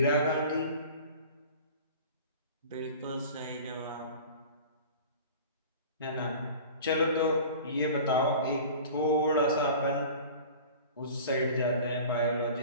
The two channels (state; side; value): inverted; both; correlation -0.40